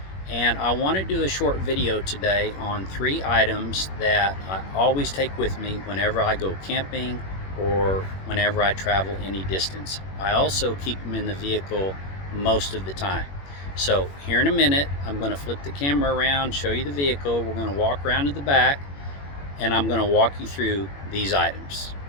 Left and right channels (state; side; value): late; right; 21 ms